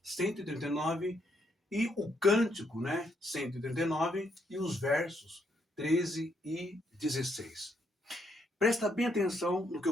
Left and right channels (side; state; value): both; normal; correlation 0.75